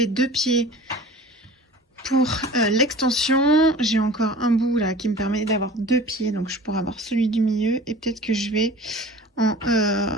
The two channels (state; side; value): normal; both; correlation 0.42